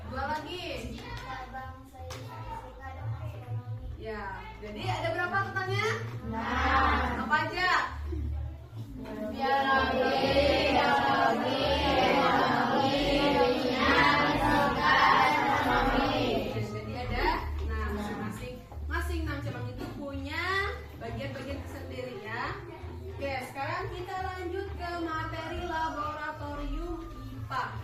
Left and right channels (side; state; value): both; identical; correlation 1.00